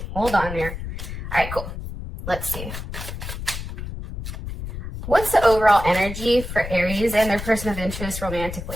hold on there. All right, cool. Let's see. What's the overall energy for Aries and their person of interest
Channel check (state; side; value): noise; left; rumble, 8 dB below the sound